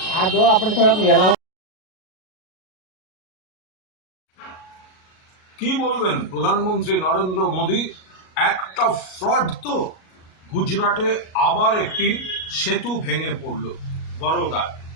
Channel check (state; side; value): late; right; 38 ms